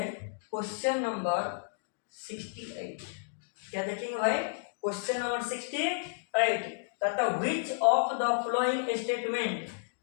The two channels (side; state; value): right; silent; digital silence